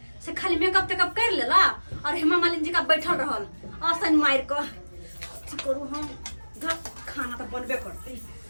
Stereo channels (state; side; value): inverted; both; correlation -1.00